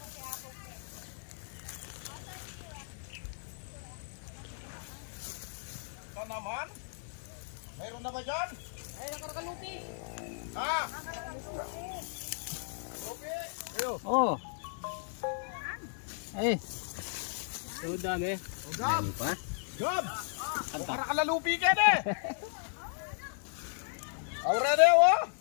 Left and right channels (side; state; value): right; silent; digital silence